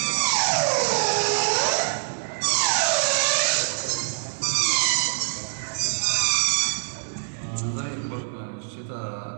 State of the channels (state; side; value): silent; left; digital silence